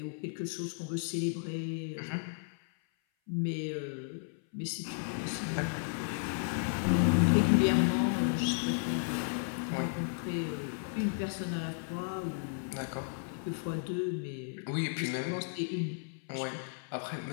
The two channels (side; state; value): right; silent; 55 dB below the other